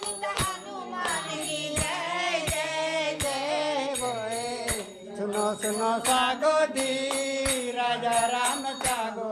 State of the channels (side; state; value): both; identical; correlation 1.00